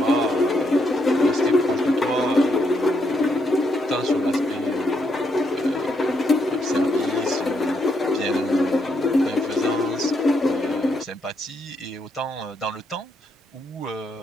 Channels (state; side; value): normal; both; correlation 0.77